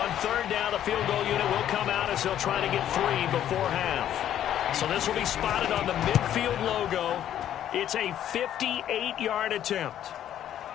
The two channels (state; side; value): quieter; right; 11.0 dB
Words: third down, the field goal unit will come out as they'll try to get 3 before half. So this will be spotted on the midfield logo. It's a 58-yard attempt.